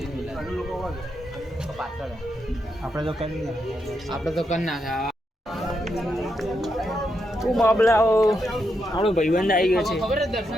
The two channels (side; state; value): both; normal; correlation 0.82